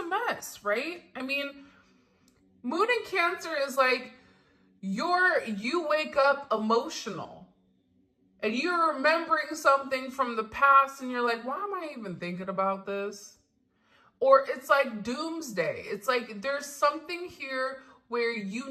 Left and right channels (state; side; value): identical; both; correlation 1.00